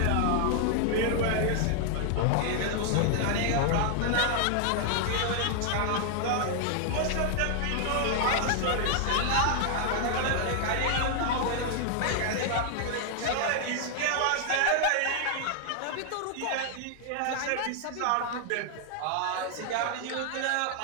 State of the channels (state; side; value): different; both; correlation 0.00